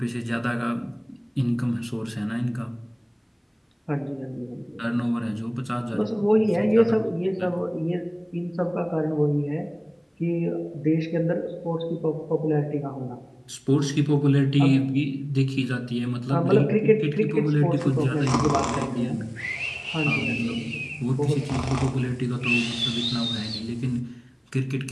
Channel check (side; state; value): both; identical; correlation 1.00